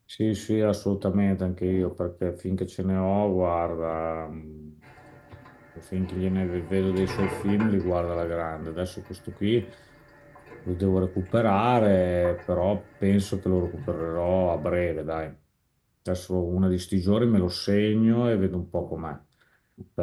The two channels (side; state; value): both; identical; correlation 1.00